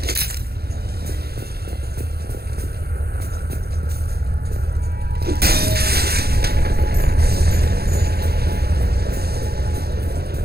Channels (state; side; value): late; left; 0.46 ms